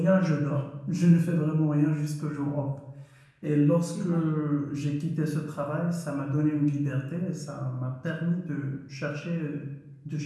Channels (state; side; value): identical; both; correlation 1.00